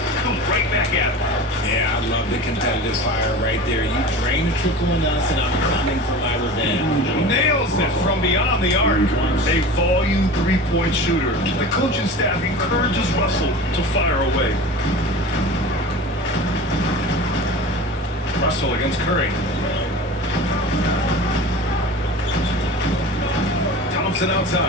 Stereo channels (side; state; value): both; normal; correlation 0.35